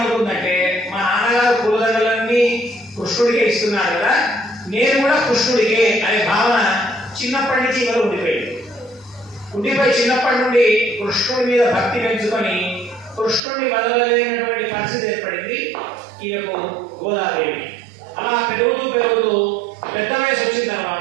మా నాన్నగారు పూలదండలన్నీ కృష్ణుడికే ఇస్తున్నాడు కదా, నేను కూడా కృష్ణుడికే అనే భావన చిన్నప్పటి నుంచి ఇవాళ ఉండిపోయి చిన్నప్పటి నుండి కృష్ణుడి మీద భక్తి పెంచుకొని కృష్ణుడిని వదలలేనటువంటి పరిస్థితి ఏర్పడింది ఈయనకు గోదాదేవి. అలా పెరుగుతూ పెద్ద వయసు వచ్చిన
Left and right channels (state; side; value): drops out; left; at 13.4 s